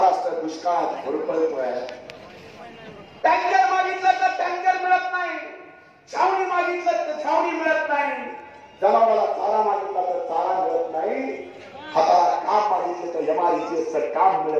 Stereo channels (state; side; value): identical; both; correlation 1.00